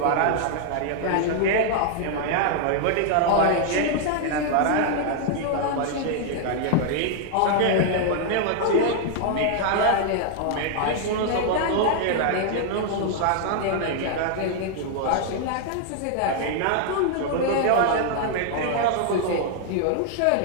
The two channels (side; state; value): both; different; correlation 0.00